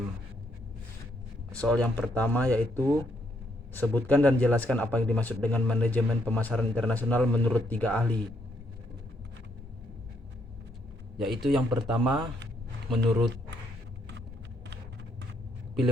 Soal yang pertama yaitu sebutkan dan jelaskan apa yang dimaksud dengan manajemen pemasaran internasional menurut 3 ahli. Yaitu yang pertama menurut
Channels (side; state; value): both; normal; correlation 0.74